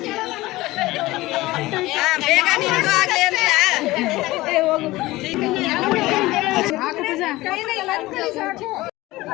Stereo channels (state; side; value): quieter; right; 18.8 dB